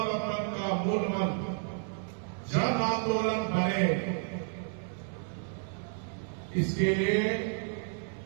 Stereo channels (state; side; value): silent; left; 57 dB below the other